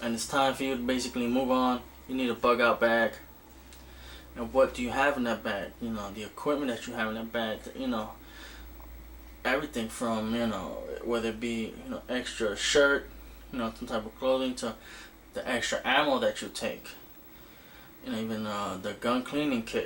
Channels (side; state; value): both; identical; correlation 1.00